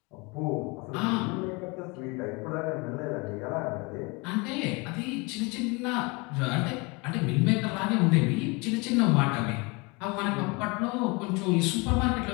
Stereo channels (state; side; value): quieter; right; 27.7 dB